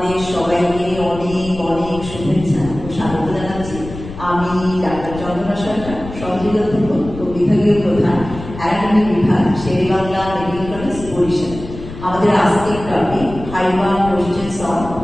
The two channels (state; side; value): noise; left; rumble, 12 dB below the sound